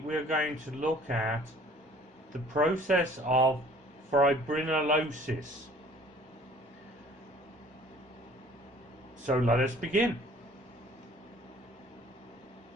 going to look at the process of fibrinolysis. So let us begin.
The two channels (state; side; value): normal; both; correlation 0.52